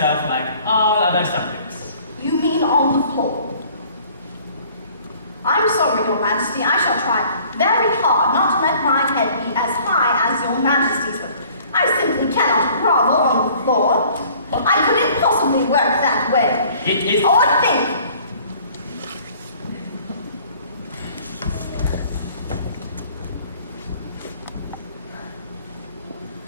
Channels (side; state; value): both; inverted; correlation -0.54